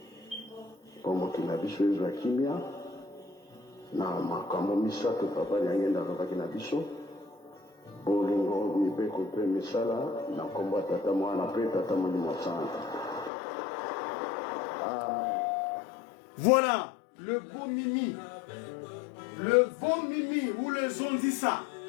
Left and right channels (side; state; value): right; drops out; at 13.3 s